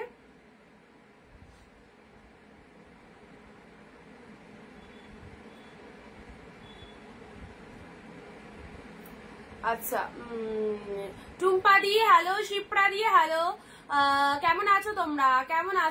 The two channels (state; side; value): identical; both; correlation 1.00